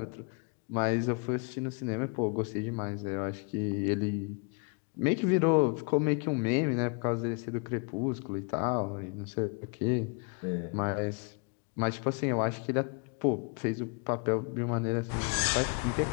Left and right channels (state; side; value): quieter; right; 34.0 dB